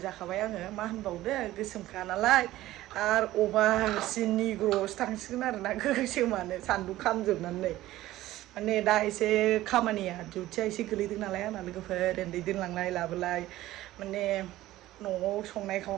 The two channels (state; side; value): quieter; left; 15.7 dB